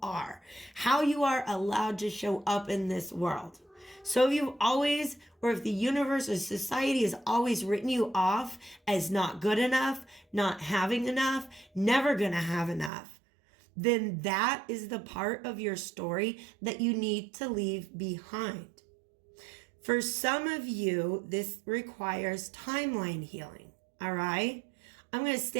are, how you are allowed to show up in this world. So if you've always, or if the universe or society has always written you off as not good enough, not having enough, never gonna have enough, then that is the part of your story that you need to leave behind. For some of you, this requires timeline healing, all right? I'm going to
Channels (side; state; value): left; drops out; at 12.9 s